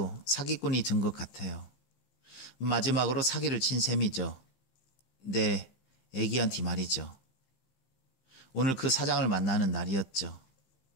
사기꾼이 된 것 같아요. 마지막으로 사기를 친 셈이죠. 내 아기한테 말이죠. 오늘 그 사장을 만나는 날이었죠.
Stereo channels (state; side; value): late; right; 15 ms